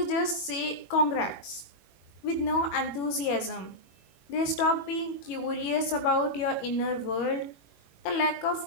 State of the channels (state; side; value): late; right; 21 ms